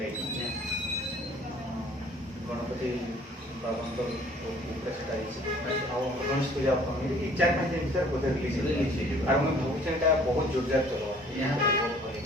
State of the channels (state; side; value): normal; both; correlation 0.55